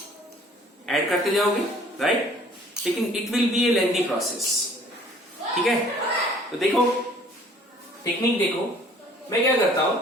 ऐड करते जाओगे, राइट? लेकिन it will be A lengthy process, ठीक है। तो देखो टेक्निक देखो, मैं क्या करता हूं,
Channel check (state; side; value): normal; both; correlation 0.54